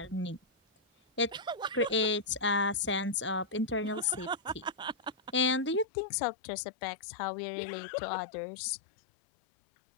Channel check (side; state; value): right; drops out; at 5.9 s